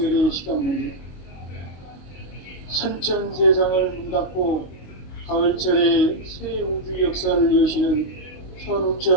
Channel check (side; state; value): right; late; 22 ms